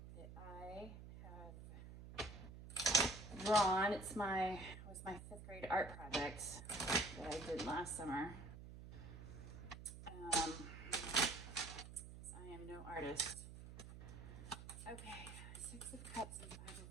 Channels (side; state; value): right; noise; hum, 12 dB below the sound